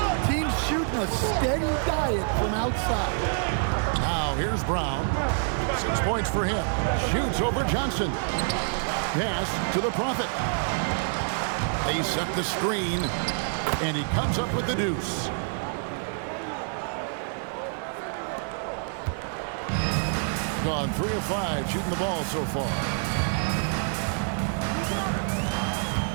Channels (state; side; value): silent; left; digital silence